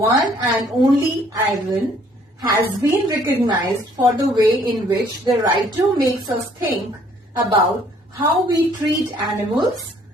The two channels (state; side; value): normal; both; correlation 0.61